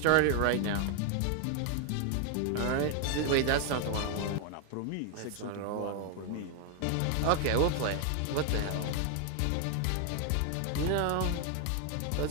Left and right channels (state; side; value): different; both; correlation 0.01